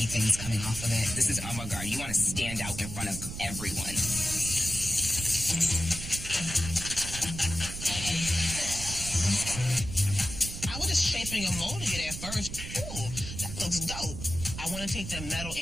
things coming off of it. This is avant-garde. You want to stand out in front of everyone. I was just shaping a mold it at first. Ooh, that looks dope. I want to take the metal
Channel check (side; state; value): right; noise; rumble, 8 dB below the sound